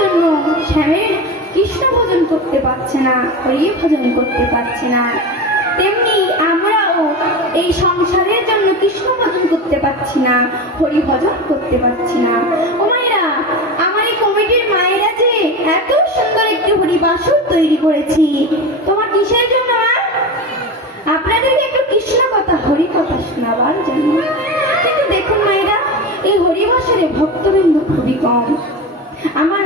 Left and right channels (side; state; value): both; normal; correlation 0.25